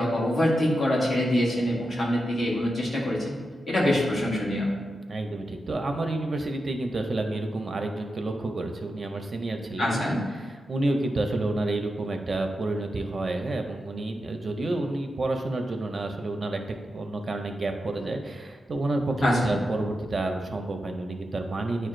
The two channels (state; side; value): normal; both; correlation 0.88